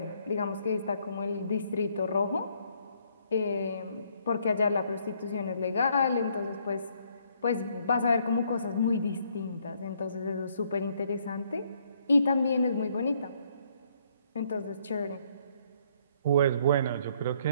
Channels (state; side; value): inverted; both; correlation -0.68